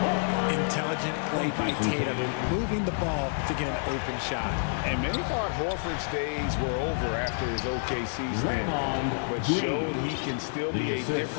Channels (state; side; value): silent; right; 59 dB below the other